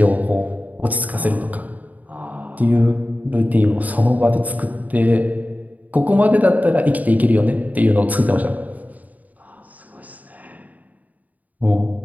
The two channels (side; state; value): left; late; 0.076 ms